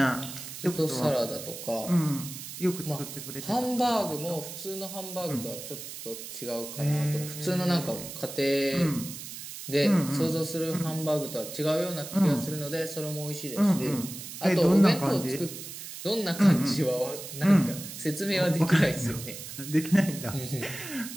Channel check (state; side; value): noise; right; hiss, 10 dB below the sound